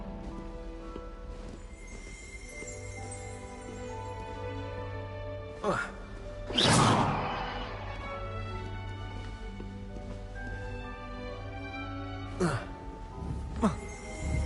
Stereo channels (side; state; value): both; identical; correlation 1.00